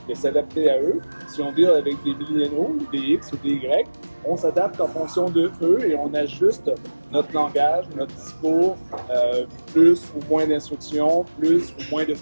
de s'adapter à eux. Si on deal avec des milléniaux, des X ou des Y, on s'adapte en fonction de eux et on ajuste notre langage, notre discours, plus ou moins d'instructions, plus ou moins de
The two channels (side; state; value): both; inverted; correlation -1.00